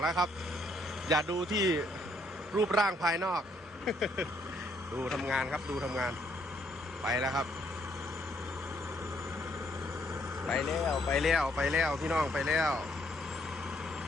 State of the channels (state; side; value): normal; both; correlation 0.70